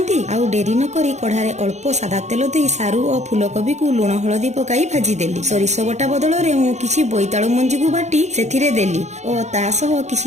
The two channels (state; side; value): late; left; 0.33 ms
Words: ଆଉ ଡେରି ନ କରି କଢାରେ ଅଳ୍ପ ସାଦା ତେଲ ଦେଇ ସାରୁ ଓ ଫୁଲକୋବିକୁ ଲୁଣ ହଳଦୀ ପକାଇ ଭାଜିଦେଲି। ସୋରିଷ ବଟା ବଦଳରେ ମୁଁ କିଛି ବୋଇତାଳୁ ମଞ୍ଜିକୁ ବାଟି ସେଥିରେ ଦେଲି ଓ ତା ସହ